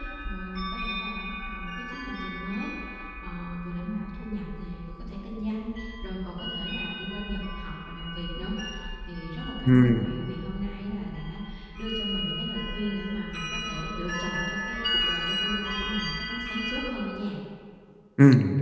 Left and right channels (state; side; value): identical; both; correlation 1.00